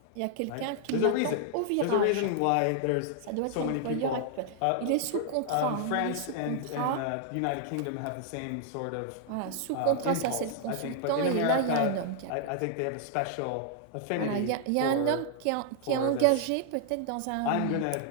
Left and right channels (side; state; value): both; different; correlation 0.00